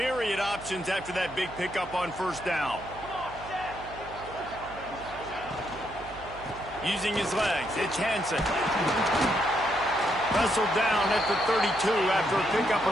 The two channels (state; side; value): noise; right; hum, 16 dB below the sound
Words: options after that big pickup on first down. Using his legs, it's Hansen. Wrestled down at the 32 after a pickup